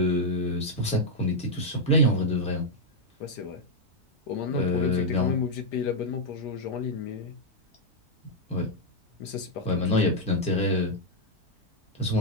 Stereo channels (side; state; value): both; normal; correlation -0.02